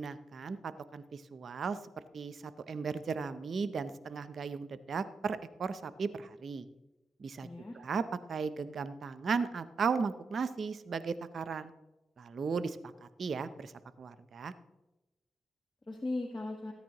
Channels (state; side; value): quieter; left; 4.4 dB